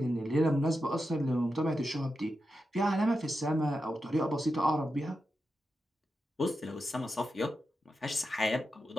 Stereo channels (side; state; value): both; normal; correlation 0.89